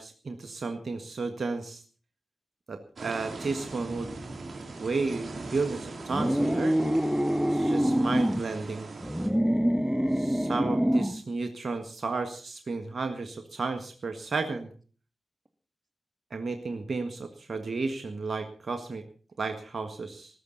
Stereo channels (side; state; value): both; normal; correlation 0.96